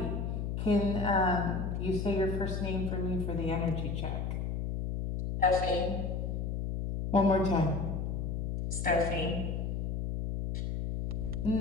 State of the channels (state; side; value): noise; left; hum, 2 dB below the sound